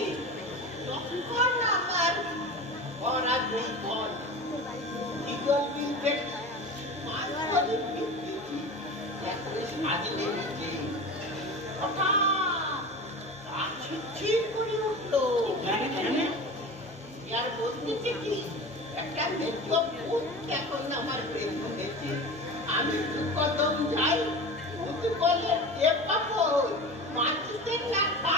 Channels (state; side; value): noise; right; hum, 27 dB below the sound